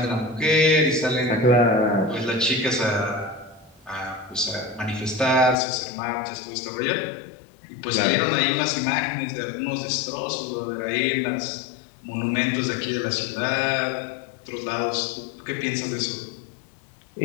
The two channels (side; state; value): right; drops out; at 5.6 s